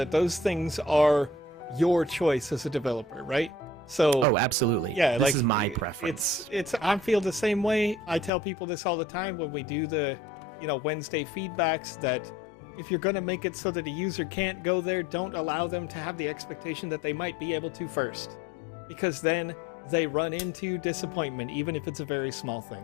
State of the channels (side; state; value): right; drops out; at 8.3 s